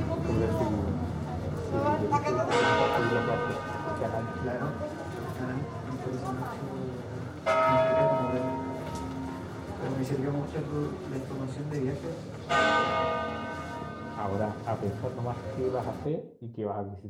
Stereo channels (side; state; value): both; identical; correlation 1.00